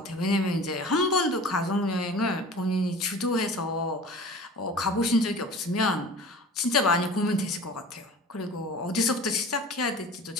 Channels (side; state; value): both; normal; correlation 0.40